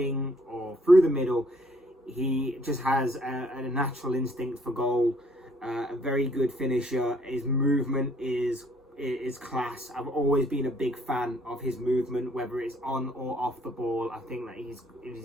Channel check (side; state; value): both; normal; correlation 0.63